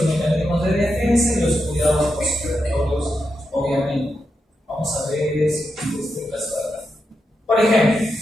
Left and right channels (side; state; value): both; normal; correlation 0.86